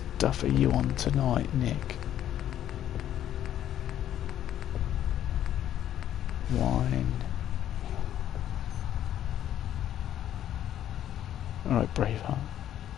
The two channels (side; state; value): right; quieter; 11.2 dB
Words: are you on tonight, Nick? Wine. Alright, Braveheart.